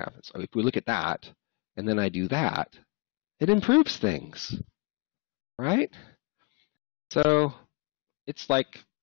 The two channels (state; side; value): quieter; right; 29.7 dB